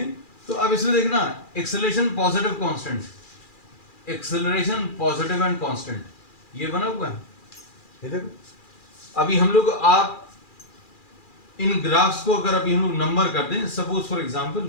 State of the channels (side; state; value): right; late; 2.4 ms